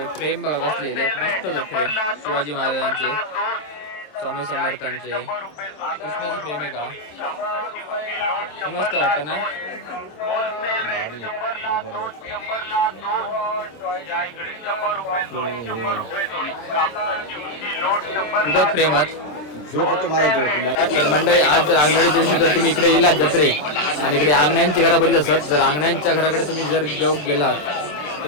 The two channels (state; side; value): late; right; 27 ms